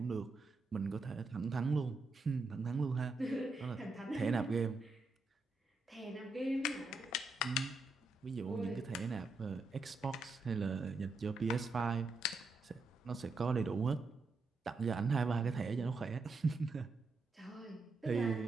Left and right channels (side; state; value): left; quieter; 3.4 dB